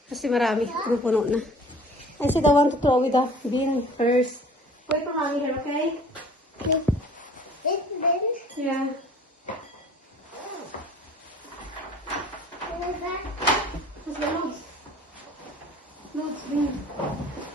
Kasi marami, puno na. I said I want to throw with the bin first. Wait for mommy here, okay? Yeah. What's the notes? Notes, bin.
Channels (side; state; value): both; normal; correlation 0.49